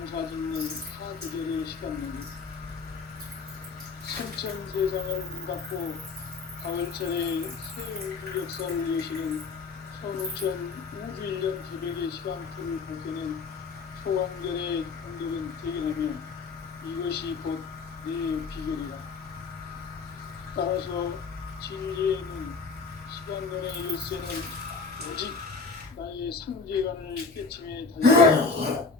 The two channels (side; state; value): right; quieter; 4.5 dB